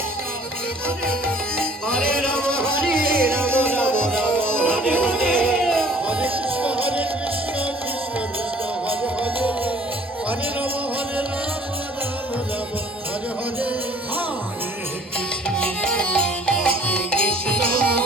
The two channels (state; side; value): normal; both; correlation 0.53